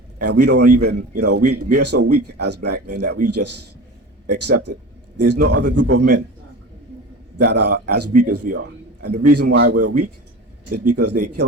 And we don't even, we are so weak as black men that we just accept it. There's no other group of men that are as weak as we are. And the reason why we're weak is because they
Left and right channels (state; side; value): normal; both; correlation 0.34